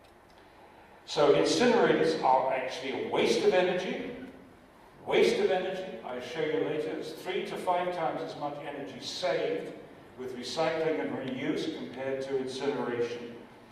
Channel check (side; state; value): both; identical; correlation 1.00